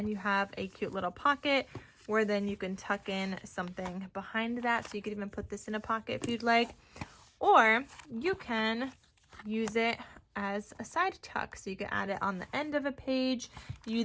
you have a cute little pocket where then you can tuck in something behind that. So you could even put this in a pocket if you'd like, or you can use it as a side tuck. So you can add it on the end of a page. You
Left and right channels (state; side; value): identical; both; correlation 1.00